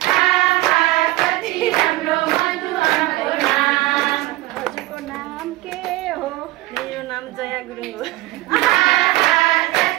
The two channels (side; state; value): left; quieter; 19.0 dB